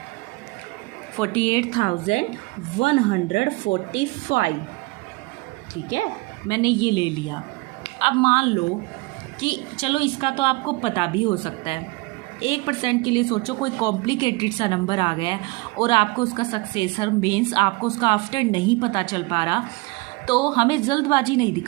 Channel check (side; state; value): left; quieter; 24.1 dB